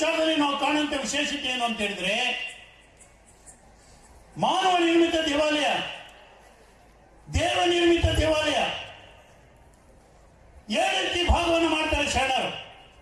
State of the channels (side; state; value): both; identical; correlation 1.00